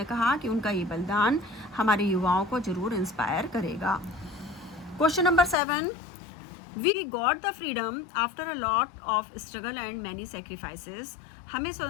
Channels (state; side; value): drops out; right; at 5.6 s